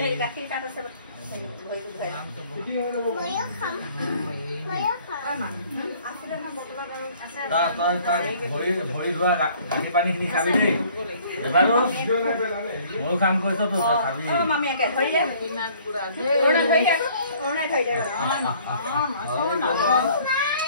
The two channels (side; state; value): both; inverted; correlation -0.56